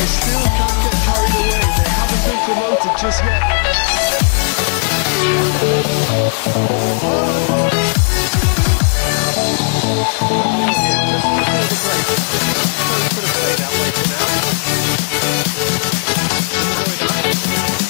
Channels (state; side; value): silent; right; digital silence